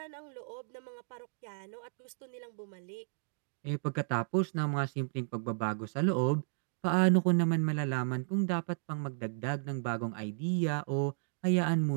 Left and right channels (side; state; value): left; silent; digital silence